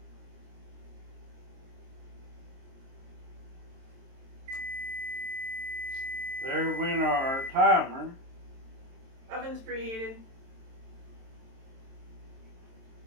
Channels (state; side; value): late; left; 22 ms